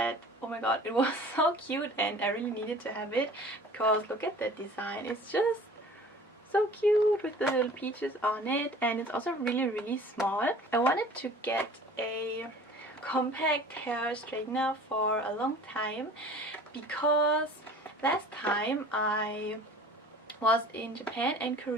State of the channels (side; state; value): both; normal; correlation 0.45